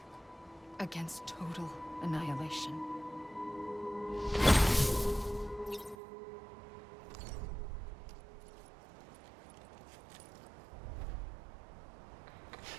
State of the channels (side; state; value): left; drops out; at 6.0 s